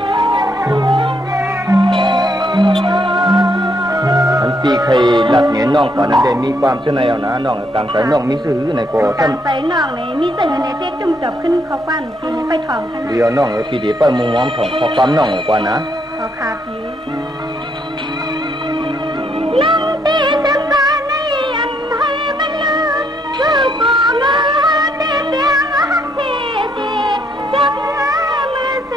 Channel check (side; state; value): both; normal; correlation 0.73